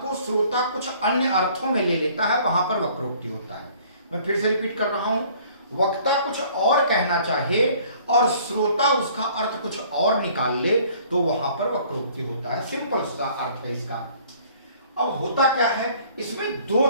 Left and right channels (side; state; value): both; inverted; correlation -0.56